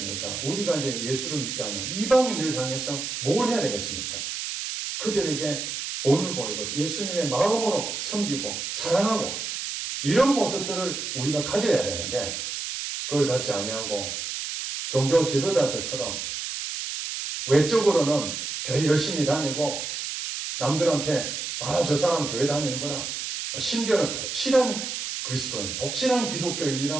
우리가 이제 예수를 믿지 않는 이방인들 향해서 뭘 해야 되겠습니까? 그들에게 본을 보이고 예수님의 마음으로 섬기고 사랑하고 이런 모습들을 우리가 가져야 되는데 그걸 갖지 아니하고 종교 지도자들처럼 외적으로는 교회 열심히 다니고 남들한테 저 사람 교회 다니는구나. 심지어는 독실한 그리스도인, 독실한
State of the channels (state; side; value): noise; right; hiss, 4 dB below the sound